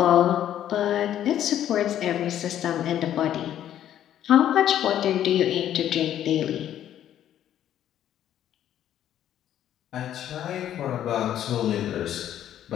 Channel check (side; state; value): right; quieter; 11.1 dB